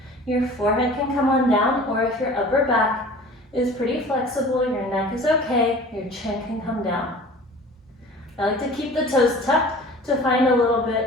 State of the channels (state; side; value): normal; both; correlation 0.43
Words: Your forehead can come on down, or if your upper back is pretty flexible, your neck is okay, your chin can come down. I like to keep the toes tucked to find a little